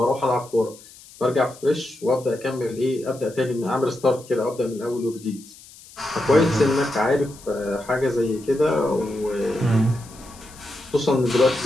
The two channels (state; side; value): noise; left; hiss, 21 dB below the sound